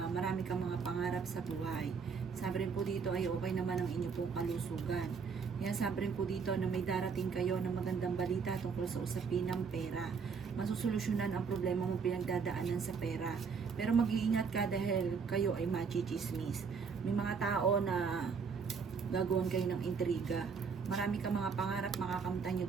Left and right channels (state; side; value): quieter; left; 5.7 dB